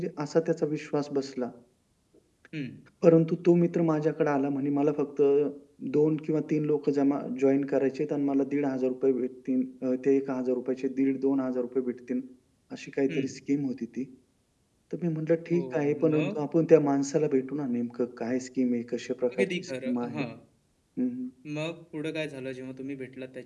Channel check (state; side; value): identical; both; correlation 1.00